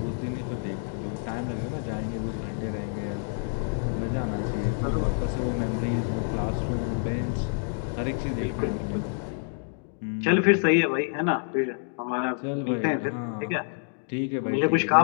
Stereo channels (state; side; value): silent; right; 60 dB below the other